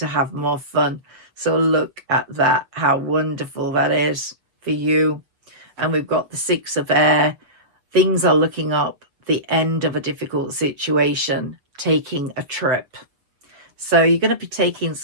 have more fun. So look at that, how wonderful that is for you. And we've got the Six of Air. Things are looking up, the end of a difficult situation, taking a trip. So you're going to be taking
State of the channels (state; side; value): late; left; 7.3 ms